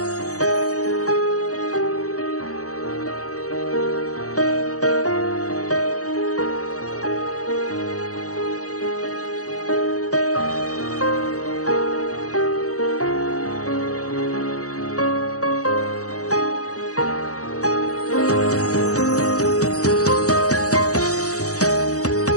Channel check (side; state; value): right; late; 0.66 ms